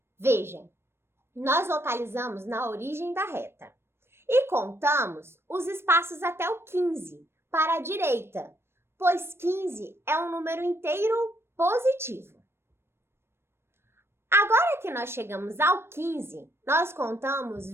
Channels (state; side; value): late; left; 0.12 ms